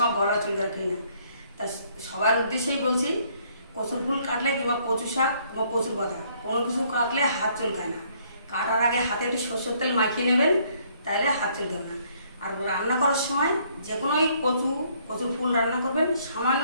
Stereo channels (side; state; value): both; inverted; correlation -0.66